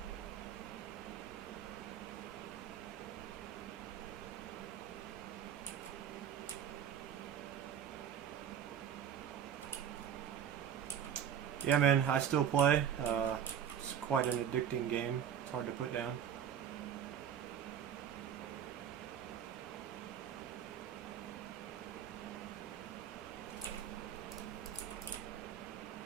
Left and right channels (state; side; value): quieter; left; 9.0 dB